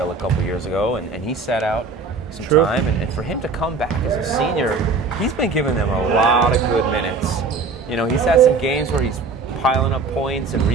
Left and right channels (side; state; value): left; quieter; 4.1 dB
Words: a couple years ago, and he sat out some True. time. And for him to come back as a senior, he's been giving them a lot of good minutes. You know, he's had some games where he's piling up points and